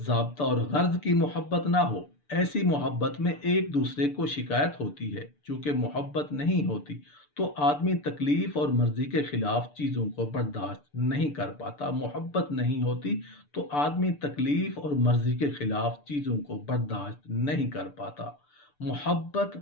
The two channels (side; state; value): right; late; 6.8 ms